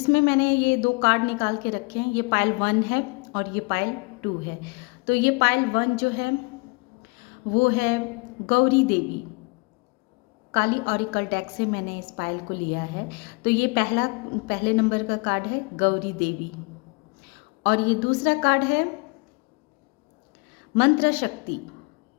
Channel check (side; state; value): right; quieter; 29.7 dB